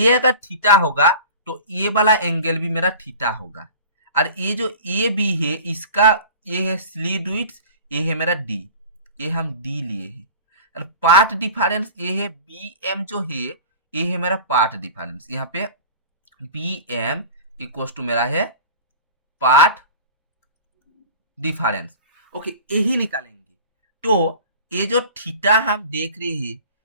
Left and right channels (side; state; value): both; inverted; correlation -0.38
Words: अगर थीटा होगा तो ये वाला एंगल भी मेरा थीटा होगा, और ये जो ए बी है इसका ये है स्लीट विड्थ, ये है मेरा डी, ये हम डी लिए हैं। और पाथ डिफरेंस ये है बी एम जो है, ये है मेरा पाथ डिफरेंस। यहाँ पे बी एम इक्वल टू मेरा है पाथ डिफरेंस। ओके, यही निकालेंगे। तो ये जो थीटा हम देख रहे हैं